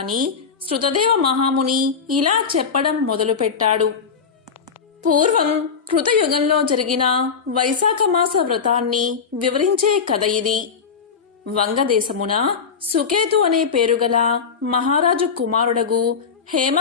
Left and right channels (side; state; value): right; quieter; 5.9 dB